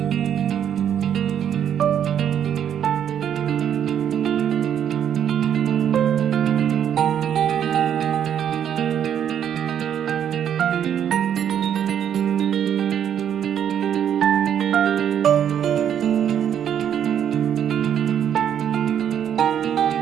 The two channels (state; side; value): quieter; left; 9.2 dB